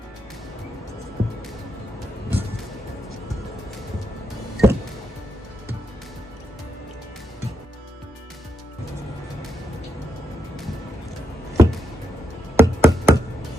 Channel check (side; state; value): both; normal; correlation 0.82